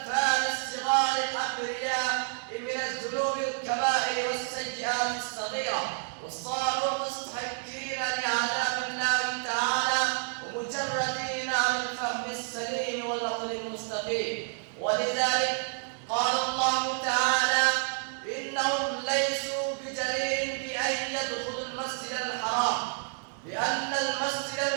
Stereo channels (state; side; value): silent; left; 58 dB below the other